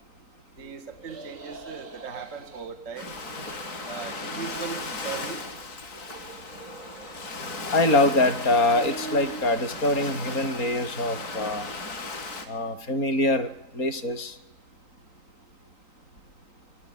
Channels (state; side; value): late; right; 3.9 ms